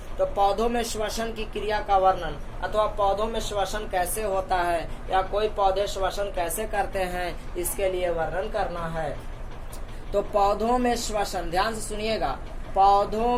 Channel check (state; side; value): identical; both; correlation 1.00